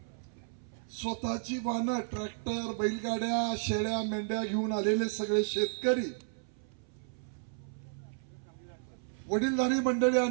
स्वतःची वाहनं ट्रॅक्टर बैलगाड्या शेळ्या मेंढ्या घेऊन आलेले सगळे शेतकरी, वडीलधारी मंडळी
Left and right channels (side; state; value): left; silent; 56 dB below the other